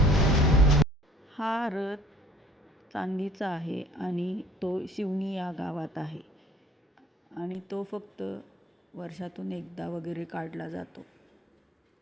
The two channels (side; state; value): both; normal; correlation 0.53